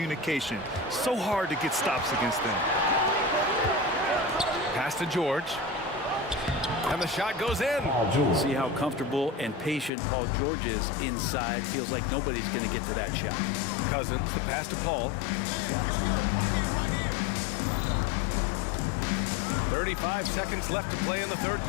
So hard to get stops against them. Pass to George. And the shot goes in. See how comfortable and patient Paul George is inside. Feels like nobody's going to get to that shot. Cousins, the pass to Paul. 35 seconds left to play in the third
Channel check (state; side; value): drops out; right; at 9.9 s